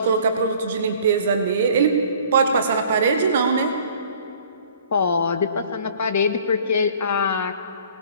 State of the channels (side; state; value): both; inverted; correlation -0.52